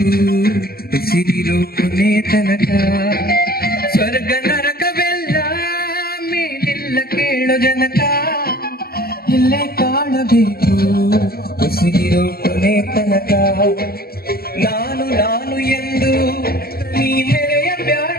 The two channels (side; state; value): right; late; 0.45 ms